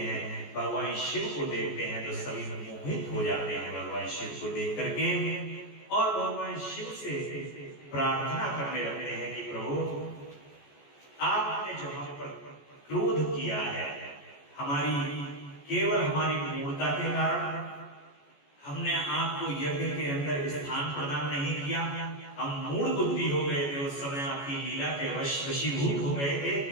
भगवान शिव को देखते हैं तो सभी मोहित हो जाते हैं भगवान शिव को देख करके, और भगवान शिव से प्रार्थना करने लगते हैं कि प्रभु आपने जो हम पर क्रोध किया है, केवल हमारी मूर्खता के कारण हमने आपको यज्ञ के अंदर स्थान प्रदान नहीं किया, हम मूढ़ बुद्धि हो गए थे, उस समय आपकी लीला के वशीभूत हो गए थे।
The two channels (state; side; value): late; right; 14 ms